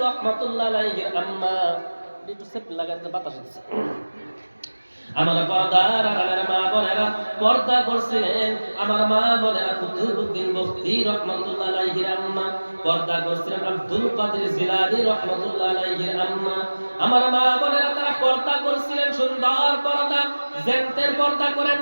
রাহমাতুল্লাহ আলাইহির আম্মা। একটু সেপ লাগাতে বাতাস দিচ্ছে। আমার পর্দার আড়ালের মা বোনেরা পর্দা করছিলেন, আমার মা বোনেরা কুতুবউদ্দিন বখতি রাহমাতুল্লাহ আলাইহির আম্মা, পর্দা করছিলেন আব্দুল কাদের জিলানী রাহমাতুল্লাহ আলাইহির আম্মা। আমার মা বোনেরা তারা পর্দা করছিলেন, সুন্দর পর্দা, জেন্টের পর্দা করেন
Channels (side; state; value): both; inverted; correlation -1.00